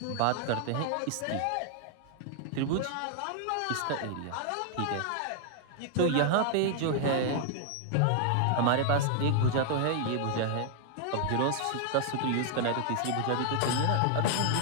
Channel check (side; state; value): both; different; correlation 0.00